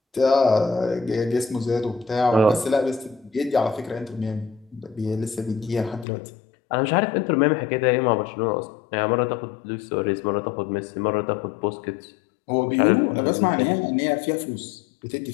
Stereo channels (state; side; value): drops out; right; at 6.1 s